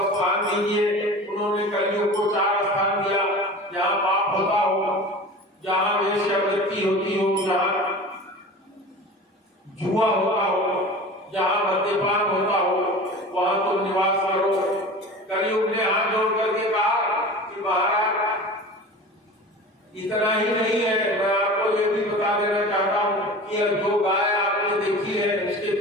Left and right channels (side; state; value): both; normal; correlation 0.36